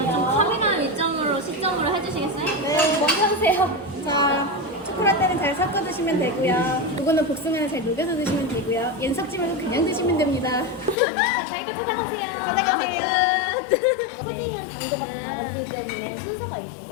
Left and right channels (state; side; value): drops out; right; at 11.0 s